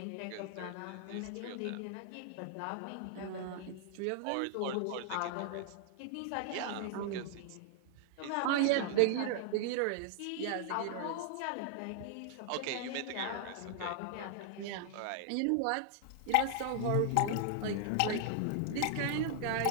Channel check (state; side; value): different; both; correlation 0.00